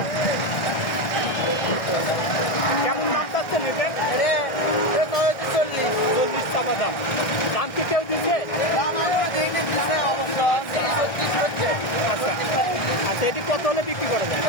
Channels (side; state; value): right; late; 1.6 ms